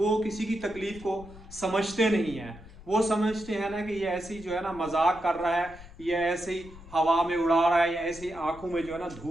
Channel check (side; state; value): left; noise; rumble, 18 dB below the sound